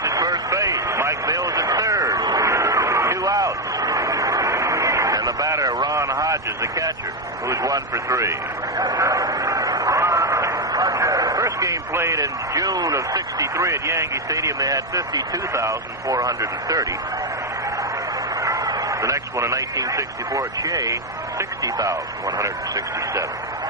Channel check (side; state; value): both; normal; correlation 0.05